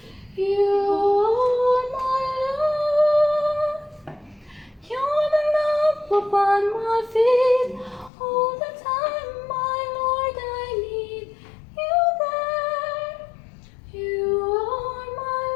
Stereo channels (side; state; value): right; drops out; at 8.1 s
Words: you are my life. You're the lamp upon my feet. All the time, my Lord, I need you there. You are my